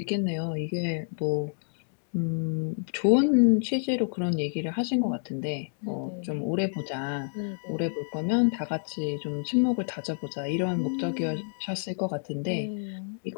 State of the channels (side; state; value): right; silent; digital silence